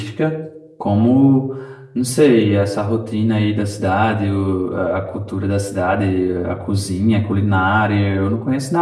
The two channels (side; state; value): both; identical; correlation 1.00